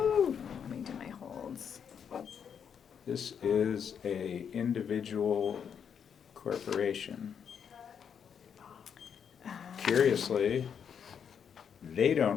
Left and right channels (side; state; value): right; quieter; 7.5 dB